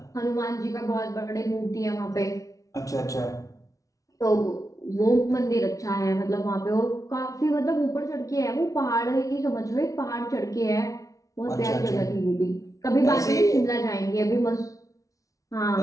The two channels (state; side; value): late; right; 0.17 ms